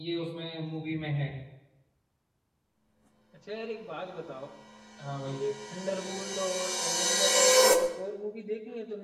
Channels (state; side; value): identical; both; correlation 1.00